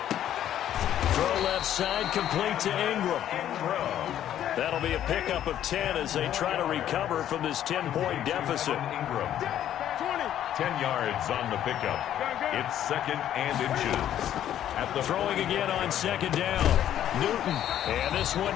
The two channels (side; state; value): right; quieter; 11.1 dB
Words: Throw left side, complete to Ingram. That'll be a pickup of 10 as they try to recover from this 10-point deficit. 10 yards on the pickup. It's 2nd and inches. At the throwing again on 2nd down. Newton. And this one